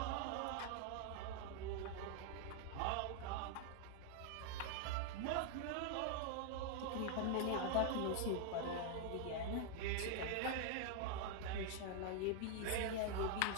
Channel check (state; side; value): different; both; correlation 0.00